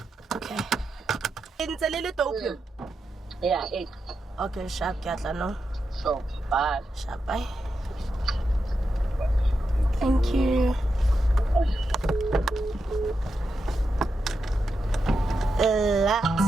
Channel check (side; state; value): both; normal; correlation 0.87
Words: Okay. It's a little dope. Yeah, 8. Okay, sharp, Katla, no? So, bye. Sharp, bye. Thank you.